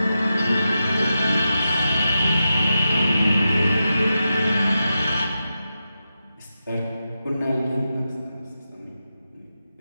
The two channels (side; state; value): both; inverted; correlation -0.89